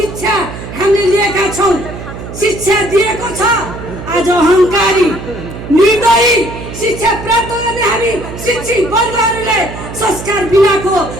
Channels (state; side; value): noise; right; hum, 10 dB below the sound